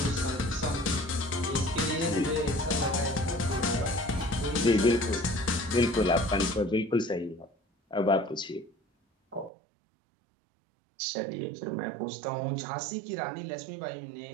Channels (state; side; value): drops out; left; at 9.5 s